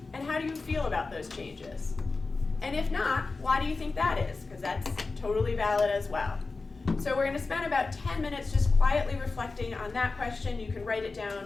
And how do you feel about those changes? And if not, why do you think that is? Because that's totally valid as well. So we're going to spend about 10 minutes just quietly reflecting on that question. You can write it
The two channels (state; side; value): quieter; right; 3.9 dB